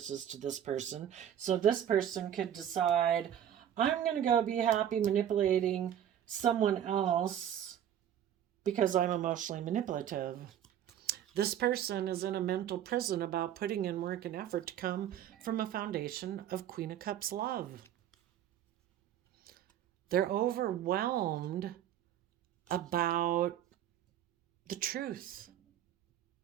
to this person, so this person could decide, I'm going to go be happy manipulating someone else because I'm emotionally manipulative. This person is in a mental prison about putting in work and effort to come from a foundation of Queen of Cups love. They're overwhelmed about the truth,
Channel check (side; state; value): left; quieter; 10.3 dB